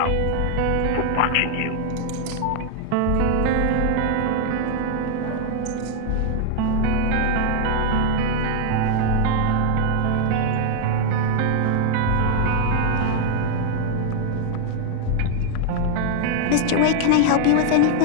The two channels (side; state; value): both; different; correlation 0.00